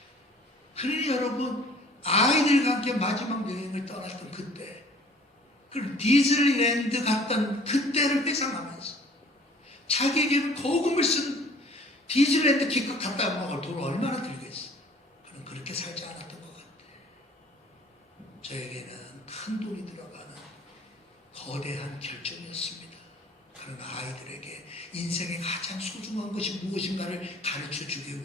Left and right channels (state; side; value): normal; both; correlation 0.52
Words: 그러니 여러분 아이들과 함께 마지막 여행을 떠났던 그때, 그 디즈니랜드 갔던 그때를 회상하면서 자기에게는 거금을 쓴 디즈니랜드 기껏 갔다 먹을 돈을 얼마나 들겠어. 그는 그렇게 살지 않았던 것 같아. 저에게는 큰 돈이 들어가는 거대한 결정이었습니다. 그런 아이들에게 인생의 가장 소중한 것이 무엇인가를 가르쳐주기